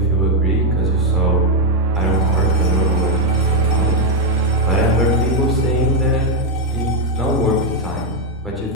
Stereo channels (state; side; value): normal; both; correlation 0.02